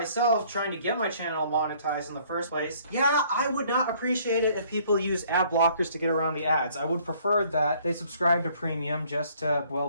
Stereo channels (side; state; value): both; inverted; correlation -0.60